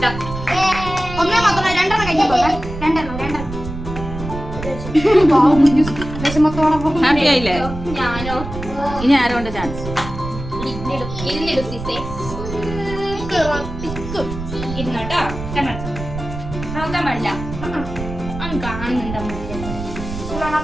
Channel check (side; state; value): right; noise; rumble, 9 dB below the sound